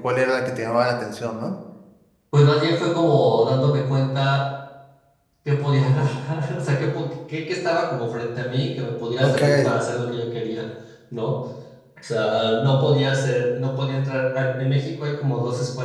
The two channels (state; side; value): identical; both; correlation 1.00